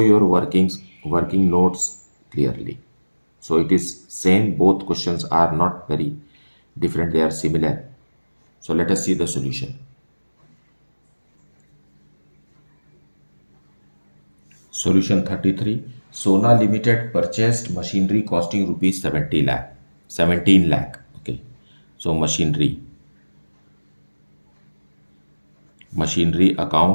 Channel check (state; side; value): inverted; both; correlation -1.00